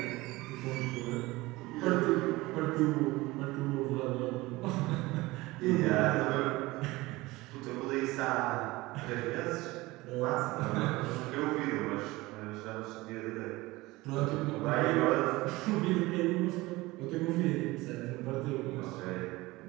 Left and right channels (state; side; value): quieter; left; 20.5 dB